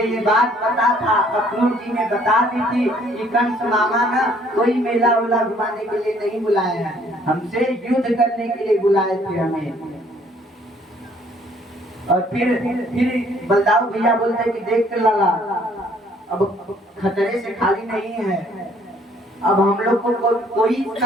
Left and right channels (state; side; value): normal; both; correlation 0.61